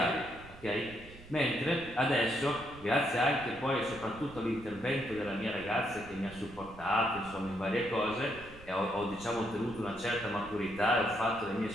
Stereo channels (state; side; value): noise; right; rumble, 18 dB below the sound